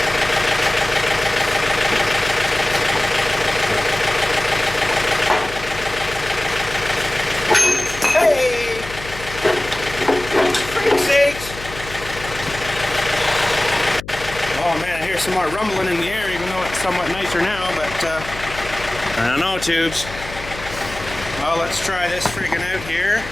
Some more rumbling in the air, even though it's somewhat nicer now, but I don't know, tubes. Well, let's try this freaking out here.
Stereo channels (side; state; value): left; noise; hum, 13 dB below the sound